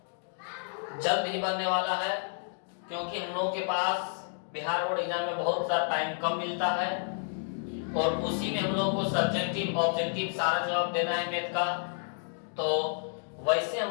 जल्द ही बनने वाला है, क्योंकि हम लोगों के पास बिहार बोर्ड एग्जाम में बहुत सा टाइम कम मिलता है और उसी में हम लोग को सब्जेक्टिव ऑब्जेक्टिव सारा जवाब देना है मैथ का। तो वैसे हम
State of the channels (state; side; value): silent; right; digital silence